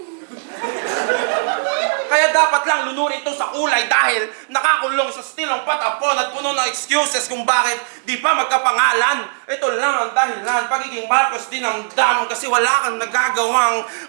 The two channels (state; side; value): silent; left; digital silence